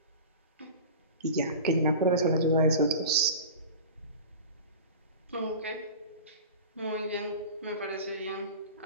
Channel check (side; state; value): both; inverted; correlation -0.34